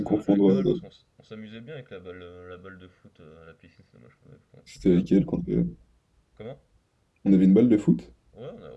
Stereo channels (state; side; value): identical; both; correlation 1.00